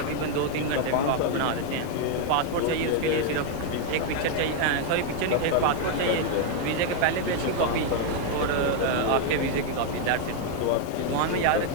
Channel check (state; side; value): different; both; correlation 0.00